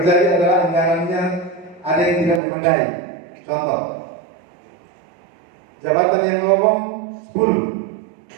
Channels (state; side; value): drops out; left; at 2.4 s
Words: adalah anggarannya ada yang tidak memadai. Contoh, jabatan yang lowong